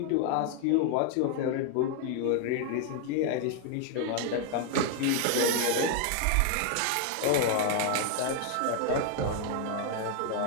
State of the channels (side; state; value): both; different; correlation 0.00